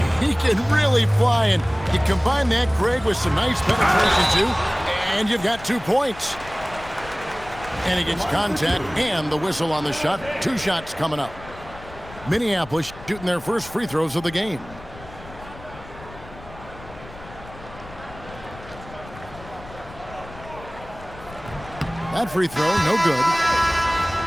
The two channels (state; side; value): noise; left; rumble, 17 dB below the sound